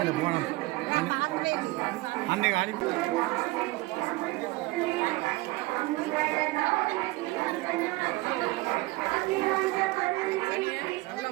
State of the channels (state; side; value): quieter; left; 21.1 dB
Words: போனோம் அன்னைக்கு அனுப்பி